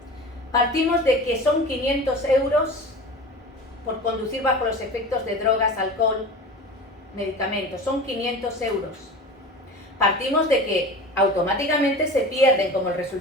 Partimos de que son 500 euros por conducir bajo los efectos de drogas, alcohol, medicamentos. Son 500 euros. Partimos de que automáticamente se pierden, como el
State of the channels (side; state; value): both; normal; correlation 0.35